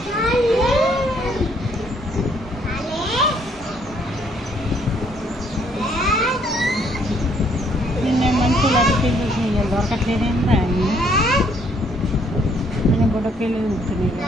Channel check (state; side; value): normal; both; correlation 0.66